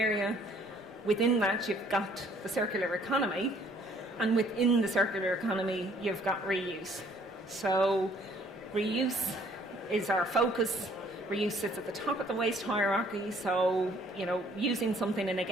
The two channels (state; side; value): normal; both; correlation 0.61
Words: Within that, you've got the circular economy, and within the circular economy, you've got reuse. So reuse is our focus. Reuse sits at the top of the waste hierarchy, so, using something and